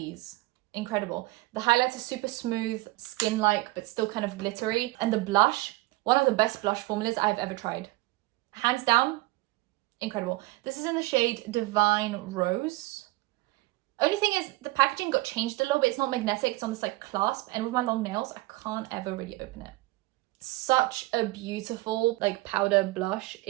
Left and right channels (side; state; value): left; quieter; 20.7 dB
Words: Incredible. The highlights are super smooth, skin-like, but still kind of glittery. And the blush, one of the best blush formulas I've ever tried. Hands down, incredible. This is in the shade Divine Rose. Only thing is the packaging got changed a little bit. It's not magnetic, it's on this like clasp. And with my long nails, I can't ever really open it. Such a beautiful like powder blush.